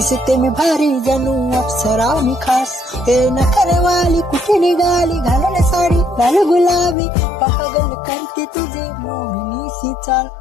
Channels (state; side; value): drops out; right; at 7.0 s